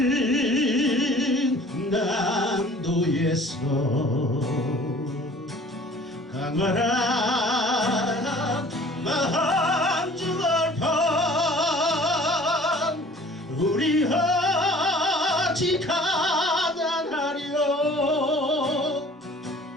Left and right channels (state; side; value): normal; both; correlation 0.49